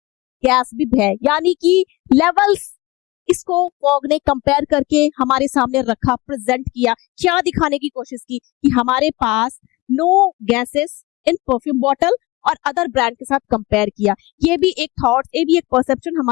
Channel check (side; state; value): right; quieter; 21.3 dB